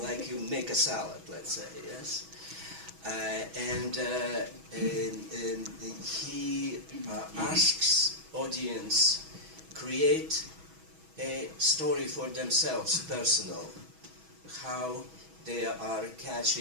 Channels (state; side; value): late; left; 6.2 ms